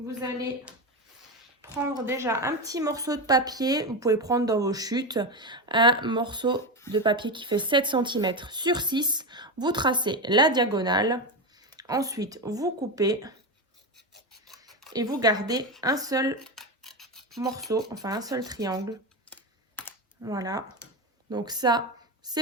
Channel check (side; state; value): both; normal; correlation 0.15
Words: allez prendre déjà un petit morceau de papier. Vous pouvez prendre dans vos chutes un morceau de papier qui fait 7 cm sur 6. Vous tracez la diagonale. Ensuite, vous coupez et vous gardez un seul morceau, enfin un seul triangle. Voilà. Donc ça,